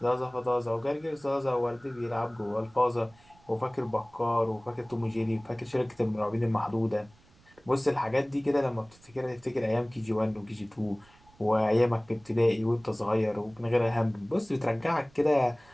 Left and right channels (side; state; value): right; noise; rumble, 29 dB below the sound